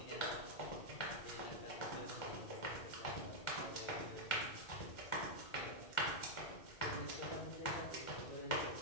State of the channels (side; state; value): right; late; 1.4 ms